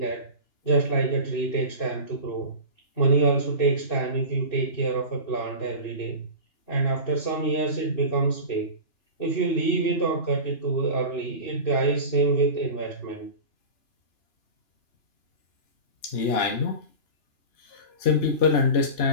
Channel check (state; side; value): late; right; 2.9 ms